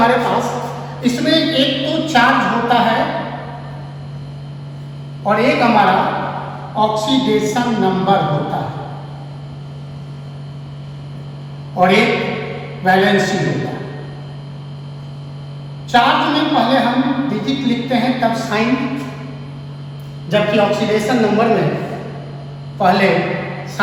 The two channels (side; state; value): both; identical; correlation 1.00